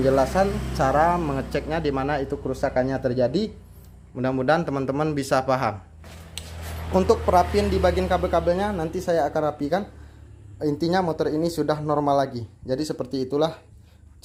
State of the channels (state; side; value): identical; both; correlation 1.00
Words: cara mengeceknya di mana itu kerusakannya terjadi. Mudah-mudahan teman-teman bisa paham. Untuk perapian di bagian kabel-kabelnya nanti saya akan rapikan. Intinya motor ini sudah normal lagi. Jadi seperti itulah